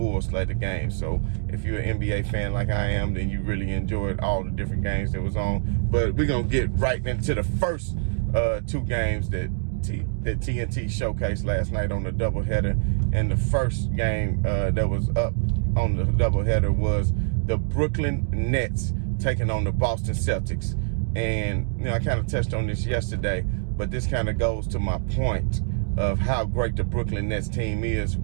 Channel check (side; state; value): left; silent; digital silence